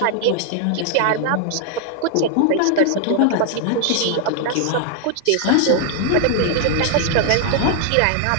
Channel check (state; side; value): different; both; correlation 0.00